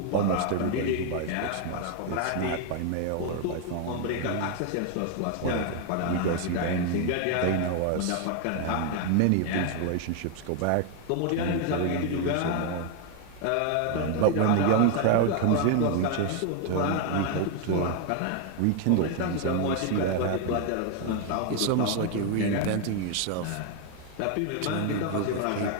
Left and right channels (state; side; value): different; both; correlation 0.01